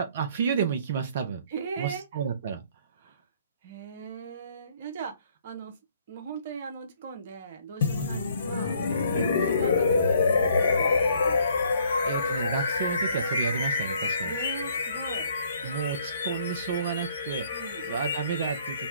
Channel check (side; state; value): both; inverted; correlation -0.63